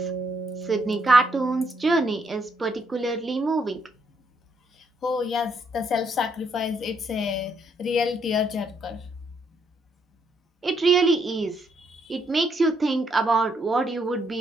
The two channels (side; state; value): both; normal; correlation 0.73